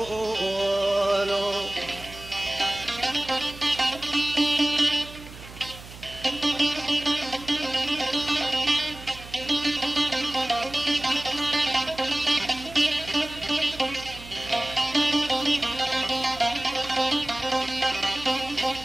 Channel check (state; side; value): noise; right; hum, 16 dB below the sound